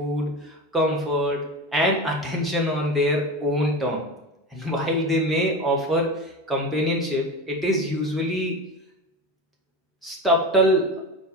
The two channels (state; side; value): normal; both; correlation 0.26